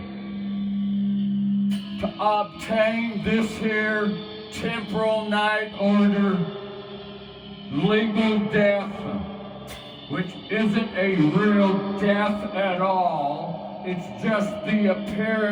to obtain this here temporal night order, legal death, which isn't a real death at all. It's just the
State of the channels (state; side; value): identical; both; correlation 1.00